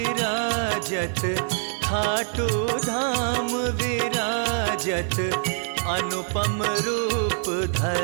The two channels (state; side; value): silent; left; 62 dB below the other